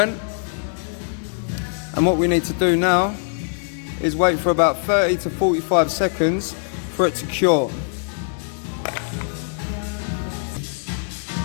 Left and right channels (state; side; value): silent; right; digital silence